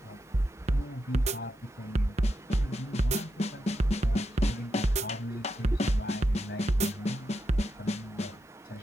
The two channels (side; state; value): both; normal; correlation 0.86